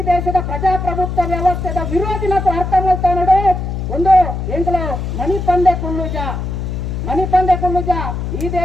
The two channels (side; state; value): left; noise; hum, 4 dB below the sound